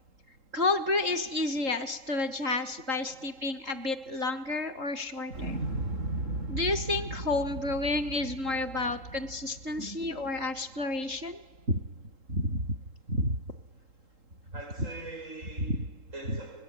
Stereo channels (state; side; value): late; left; 3.8 ms